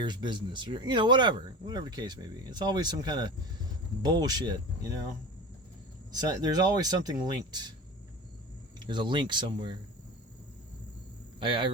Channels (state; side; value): normal; both; correlation 0.32